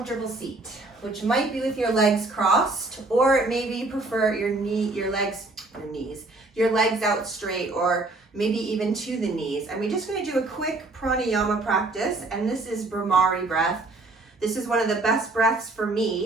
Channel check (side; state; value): left; quieter; 3.1 dB